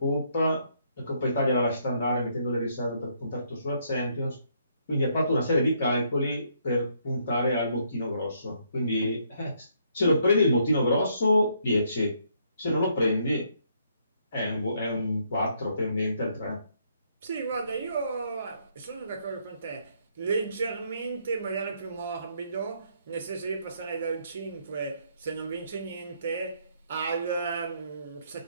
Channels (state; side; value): inverted; both; correlation -0.71